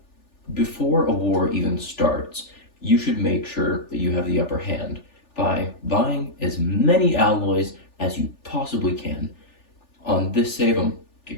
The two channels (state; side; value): late; right; 3.4 ms